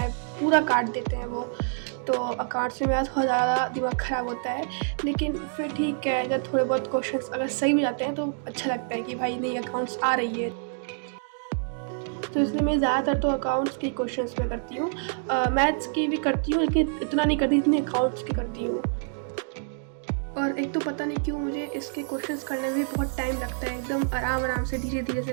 पूरा काट देते हैं वो। तो अकाउंट्स में मेरा थोड़ा ज़्यादा दिमाग ख़राब होता है, लेकिन फिर ठीक है, जब थोड़े बहुत क्वेश्चंस अगर सही भी जाते हैं तो अच्छा लगता है कि भाई नहीं, अकाउंट्स आ रही है। तो इसलिए मैं ज़्यादातर तो अकाउंट्स के क्वेश्चंस में करती हूँ। मैथ्स की भी करती हूँ, लेकिन इतना नहीं करती जितनी अकाउंट्स की करती हूँ। और एक तो पता नहीं क्यों मुझे इसके क्वेश्चंस करने में भी बहुत टाइम लगता है, एकदम आराम से धीरे धीरे से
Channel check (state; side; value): silent; left; digital silence